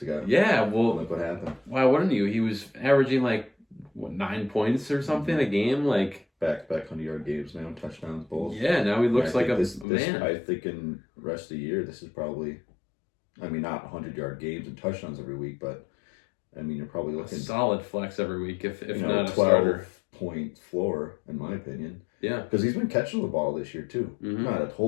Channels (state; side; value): drops out; right; at 9.9 s